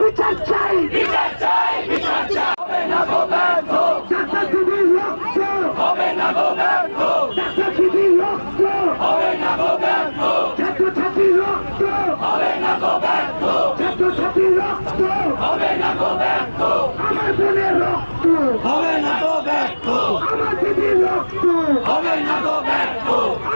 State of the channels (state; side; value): inverted; both; correlation -1.00